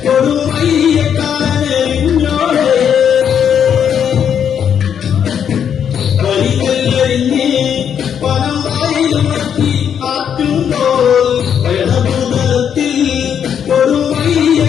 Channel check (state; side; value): quieter; right; 8.3 dB